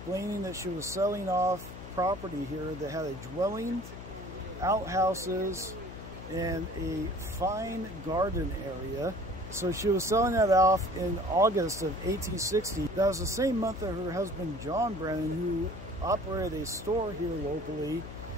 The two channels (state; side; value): noise; left; hum, 12 dB below the sound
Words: that she was selling off property here that had a dwelling, outhouses, and a fine garden area. So she was selling that off in August of 1860. That was the same month that her husband John Brannan, who operated a store here locally,